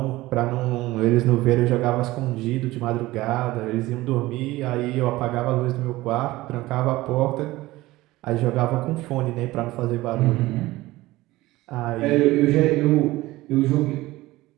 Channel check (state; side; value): quieter; left; 18.4 dB